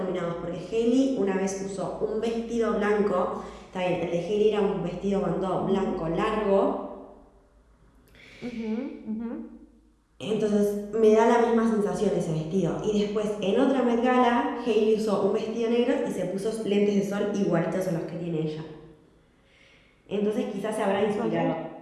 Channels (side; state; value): both; identical; correlation 1.00